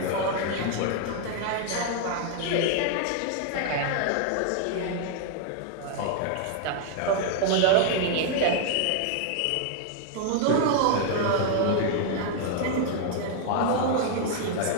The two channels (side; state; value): both; different; correlation 0.00